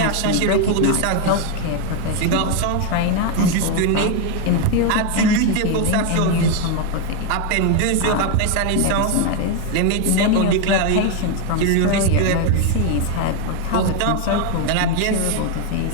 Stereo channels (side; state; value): both; different; correlation 0.01